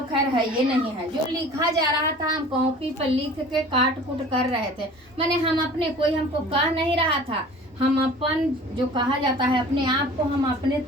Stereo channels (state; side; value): normal; both; correlation 0.44